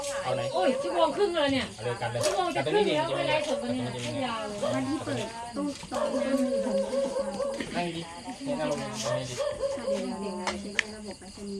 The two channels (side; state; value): both; identical; correlation 1.00